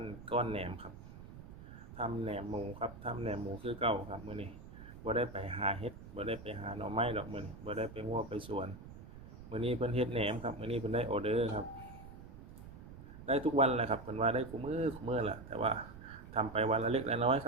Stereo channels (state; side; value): noise; right; rumble, 15 dB below the sound